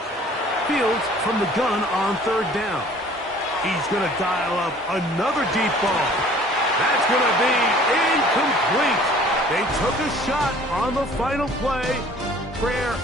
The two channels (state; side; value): normal; both; correlation 0.51